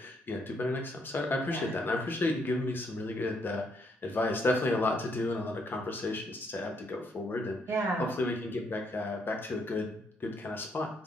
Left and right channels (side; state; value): both; normal; correlation 0.73